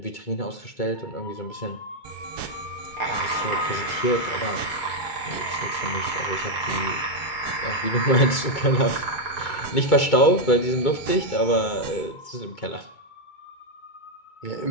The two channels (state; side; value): late; right; 2.2 ms